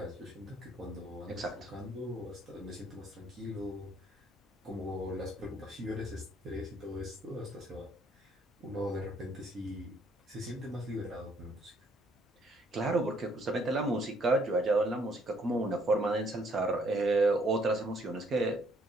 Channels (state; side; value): normal; both; correlation 0.66